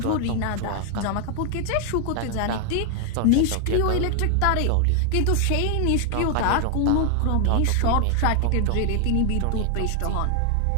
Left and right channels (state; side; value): different; both; correlation 0.00